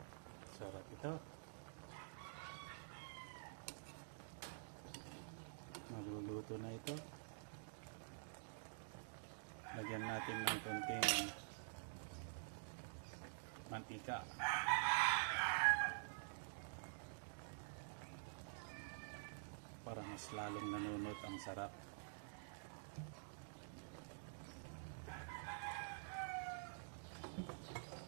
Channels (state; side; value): silent; left; digital silence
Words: Sarap ito. Magluluto na ito. Lagyan natin ng konting mantika. Para mas lalong nanunot ang sarap.